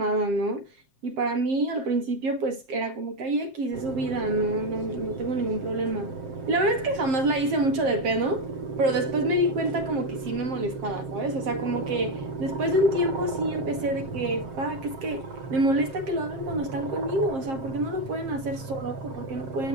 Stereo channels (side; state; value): left; late; 7.6 ms